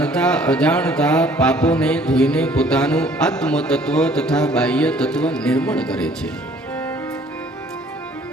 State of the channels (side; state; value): both; normal; correlation 0.57